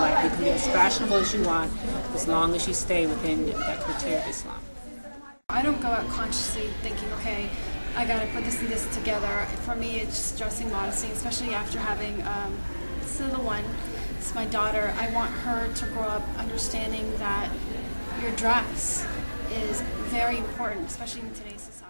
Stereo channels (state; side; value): inverted; both; correlation -1.00